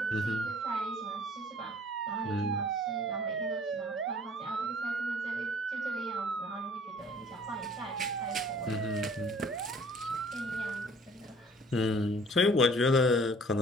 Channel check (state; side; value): normal; both; correlation 0.53